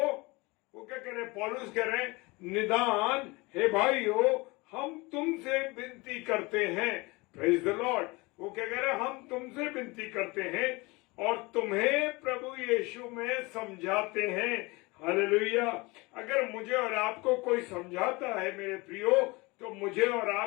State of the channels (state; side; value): quieter; right; 24.5 dB